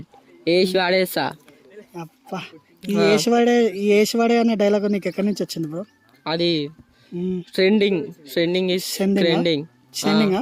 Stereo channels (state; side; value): identical; both; correlation 1.00